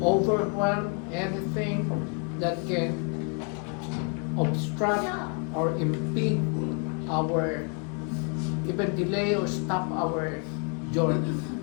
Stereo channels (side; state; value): right; quieter; 39.3 dB